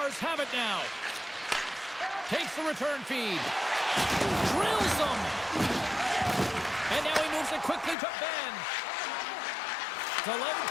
have it now. Takes the return feed. Drills them. And now he moves it quickly to Ben. Delayed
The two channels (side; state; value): right; drops out; at 8.0 s